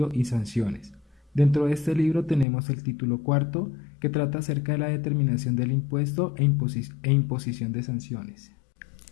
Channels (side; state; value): right; drops out; at 2.5 s